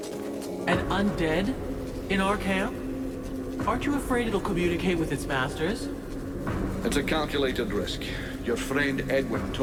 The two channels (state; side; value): identical; both; correlation 1.00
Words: Undead? In our camp? Aren't you afraid it'll communicate with its masters? It's a calculated risk. Your friend Edwin